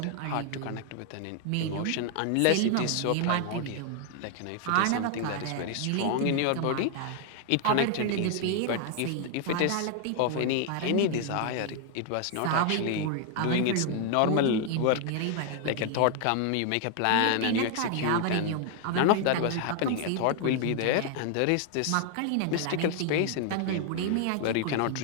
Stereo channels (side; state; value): both; different; correlation 0.00